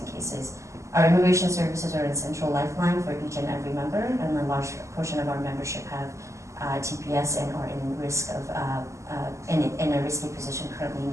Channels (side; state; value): left; late; 0.14 ms